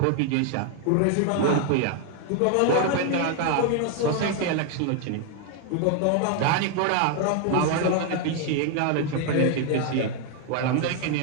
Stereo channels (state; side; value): different; both; correlation 0.00